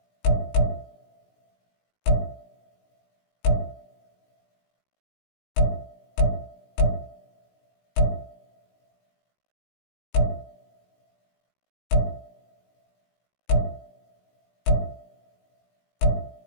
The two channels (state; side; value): late; right; 17 ms